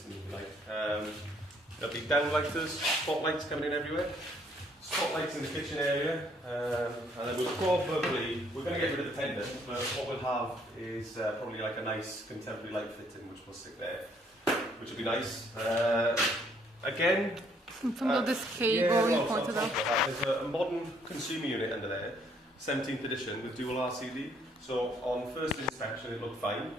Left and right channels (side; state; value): both; normal; correlation 0.66